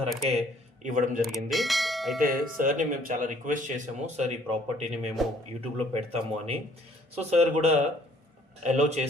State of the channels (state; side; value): normal; both; correlation 0.60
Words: ఇవ్వడం జరిగింది. అయితే సార్ని మేము చాలా రిక్వెస్ట్ చేసాము, సార్ ఈ ప్రాపర్టీని మేము యూట్యూబ్లో పెడతాము అని. సో సార్ కూడా అలో